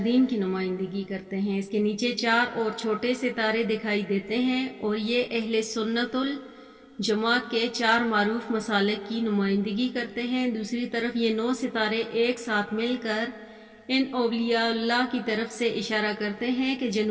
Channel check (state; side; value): identical; both; correlation 1.00